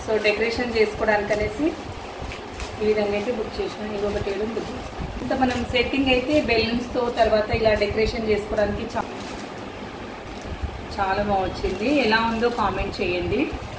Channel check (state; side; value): identical; both; correlation 1.00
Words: సో డెకరేషన్ చేసుకోవడానికి అనేసి ఈ విధంగా అయితే బుక్ చేసిన. ఇంకొకటి ఏదో బుక్ ఇంత మనం సెట్టింగ్ అయితే బెలూన్స్తో తర్వాత ఇలా డెకరేషన్ చేసుకోవడానికి చాలా బాగా వచ్చింది. ఎలా ఉందో కామెంట్ చేయండి.